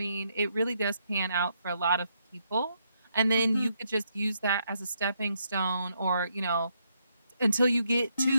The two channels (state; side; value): inverted; both; correlation -0.77